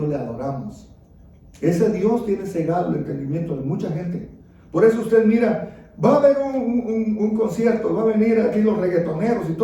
le adoramos. Ese Dios tiene cegado el entendimiento de mucha gente. Por eso usted mira, va a haber un concierto, va a venir aquí los reggaetoneros y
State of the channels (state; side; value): identical; both; correlation 1.00